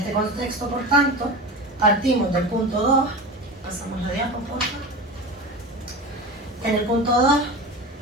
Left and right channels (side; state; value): both; normal; correlation 0.29